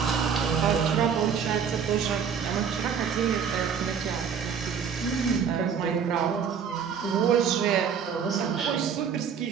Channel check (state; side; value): quieter; left; 7.1 dB